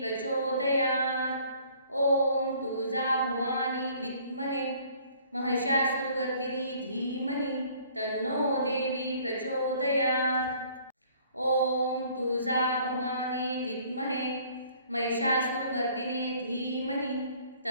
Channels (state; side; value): inverted; both; correlation -0.57